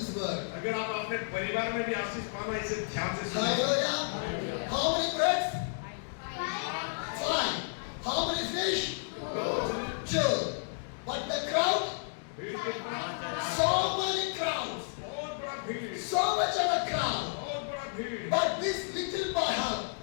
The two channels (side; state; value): right; silent; digital silence